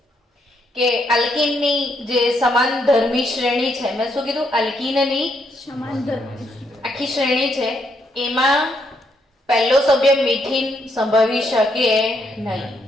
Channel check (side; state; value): both; normal; correlation 0.75